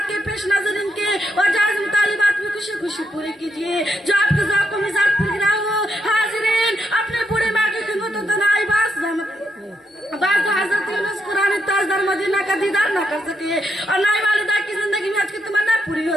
کے پیش نظر ان کے اور جائز مطالبات بھی خوشی خوشی پوری کیجیے جو آپ کے ذوق و مزاج پر گرا ہو. حاضرین, اپنے بوڑھی ماں کی خدمت و تنہائی بعض حضرت یونس قرآن تاجدار مدینہ کا دیدار نہ کر سکے اور نہ ہی والدہ کی زندگی میں حج کی تمنا پوری ہو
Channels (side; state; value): both; normal; correlation 0.81